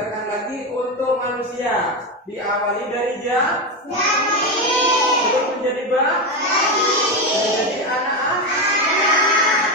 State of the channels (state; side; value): normal; both; correlation 0.13